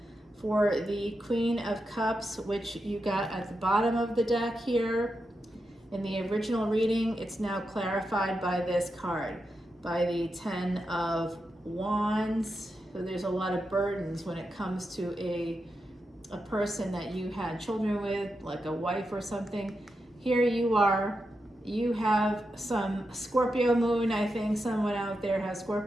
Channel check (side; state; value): both; normal; correlation 0.87